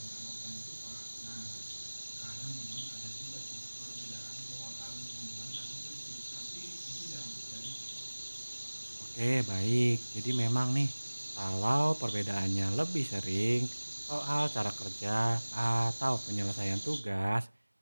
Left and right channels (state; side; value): inverted; both; correlation -1.00